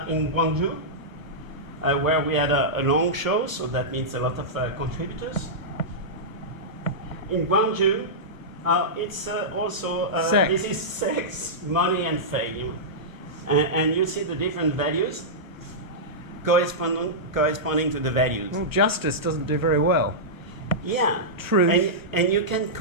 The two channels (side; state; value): left; late; 1.1 ms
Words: Gwangju, where we had a long show, so that means a lot of contributors. In Gwangju, it's also, this is sex, money, and fame. And you see the different values corresponding to the values. Well, justice doesn't do very well. Yeah. Truth. And you can